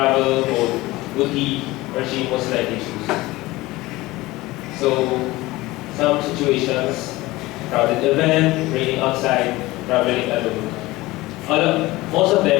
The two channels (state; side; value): quieter; right; 19.5 dB